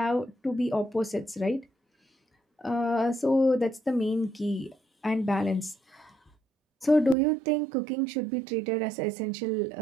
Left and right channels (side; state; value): left; drops out; at 7.2 s